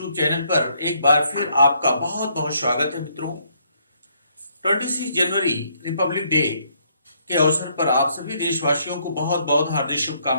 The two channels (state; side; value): inverted; both; correlation -0.70